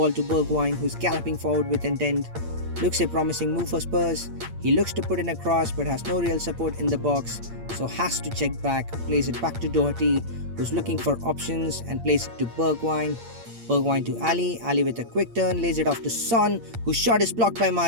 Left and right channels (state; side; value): late; left; 8.7 ms